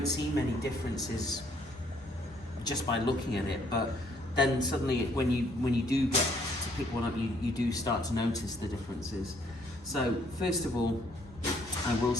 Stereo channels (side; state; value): both; normal; correlation 0.66